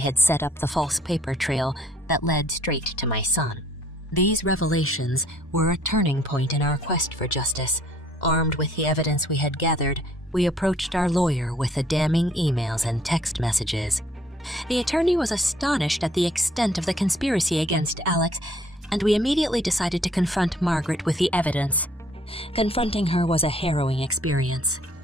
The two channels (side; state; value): both; normal; correlation 0.61